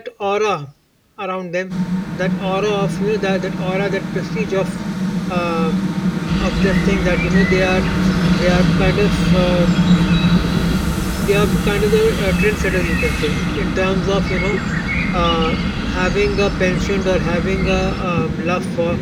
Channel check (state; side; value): identical; both; correlation 1.00